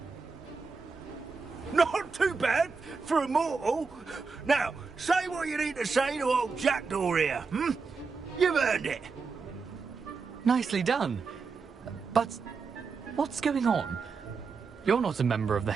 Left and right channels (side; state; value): left; quieter; 4.9 dB